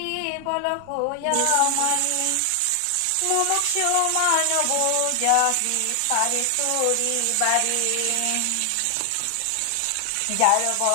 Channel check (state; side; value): different; both; correlation 0.00